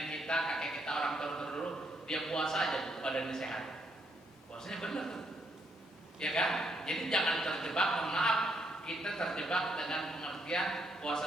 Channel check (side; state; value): both; normal; correlation 0.75